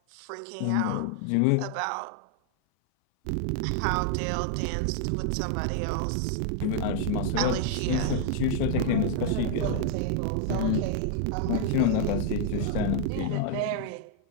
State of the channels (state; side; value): different; both; correlation 0.00